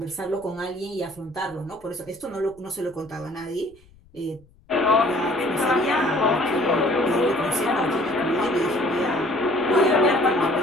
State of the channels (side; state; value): left; noise; rumble, 28 dB below the sound